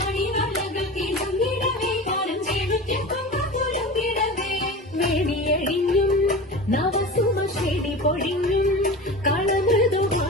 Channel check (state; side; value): normal; both; correlation 0.31